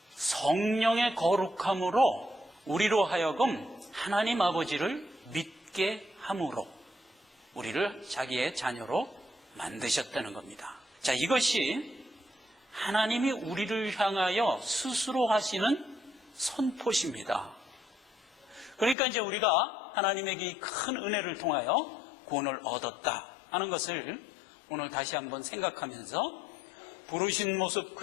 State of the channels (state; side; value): drops out; right; at 18.9 s